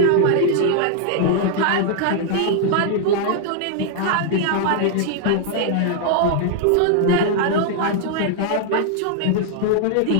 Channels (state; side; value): different; both; correlation 0.00